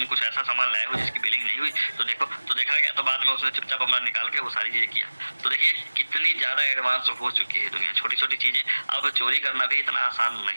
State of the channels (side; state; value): both; inverted; correlation -1.00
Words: कुछ ऐसा सामान लाए हो जिसकी बिलिंग नहीं हुई, तो देखो, तो देखा गया। तो बाद में उसने चुपचाप अपना निकाल के वो सारी चीज़ें किया। तो देखिए कितनी ज़्यादा एडवांस हो चुकी है दुनिया, छोटी छोटी चीज़ें। अब चोरी करना भी इतना आसान